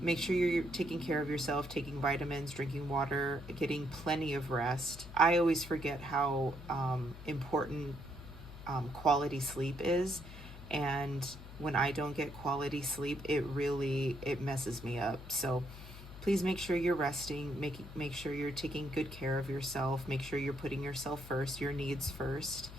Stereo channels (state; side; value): noise; left; hum, 14 dB below the sound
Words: sure you're taking care of yourself, taking vitamins, drinking water, getting plenty of rest. I always forget how important quality sleep is. And when I don't get quality sleep, it messes me up. So please make sure you're resting, make sure you're taking good care of yourself, make sure you're putting yourself first, your needs first,